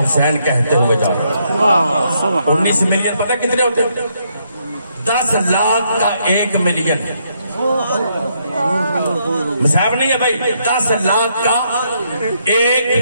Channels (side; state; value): both; inverted; correlation -0.75